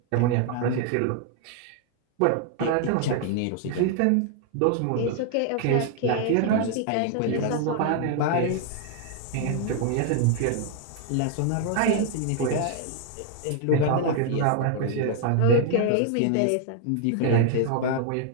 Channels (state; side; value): different; both; correlation 0.00